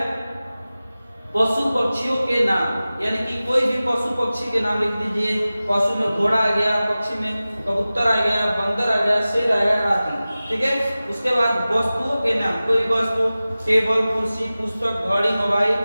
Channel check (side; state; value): both; inverted; correlation -0.97